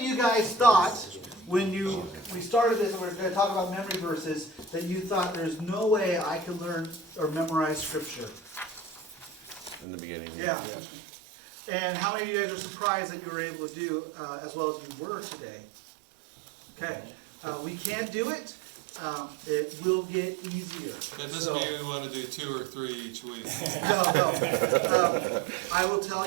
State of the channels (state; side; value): drops out; left; at 9.9 s